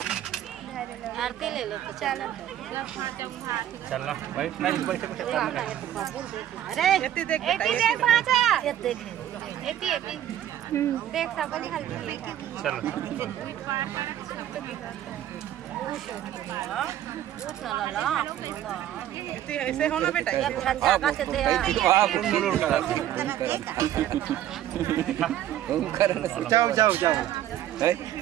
आरती ले लो तो चलो चलो बैठ नहीं बैठ अरे एती देख पाचा एती देख एती देख सब हल्दी चलो ऐसे होना बेटा जाओ जाओ जाओ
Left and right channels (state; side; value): quieter; left; 11.7 dB